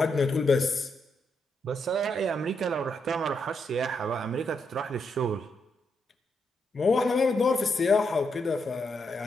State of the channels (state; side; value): normal; both; correlation 0.80